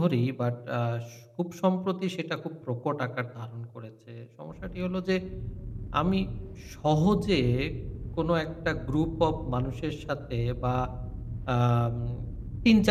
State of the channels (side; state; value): both; identical; correlation 1.00